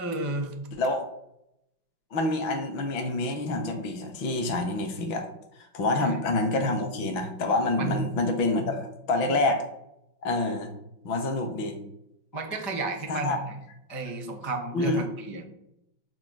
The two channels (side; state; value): right; late; 5.9 ms